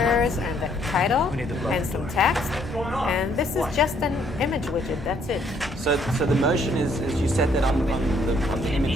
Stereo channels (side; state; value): both; normal; correlation 0.67